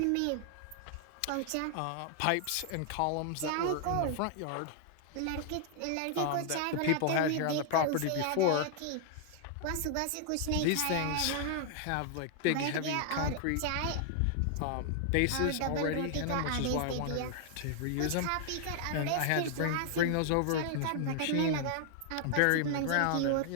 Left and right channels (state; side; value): different; both; correlation 0.00